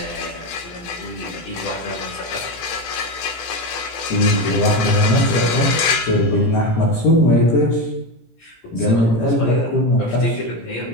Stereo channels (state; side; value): late; right; 18 ms